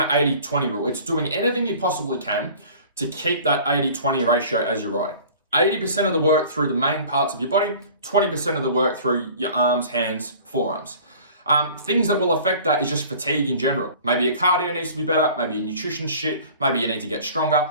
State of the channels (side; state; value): both; inverted; correlation -0.46